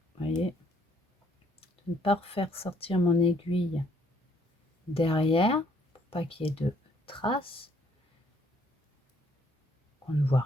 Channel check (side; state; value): both; normal; correlation 0.66